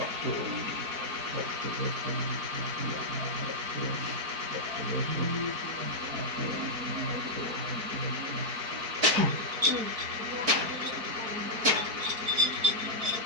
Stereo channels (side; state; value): left; late; 4.5 ms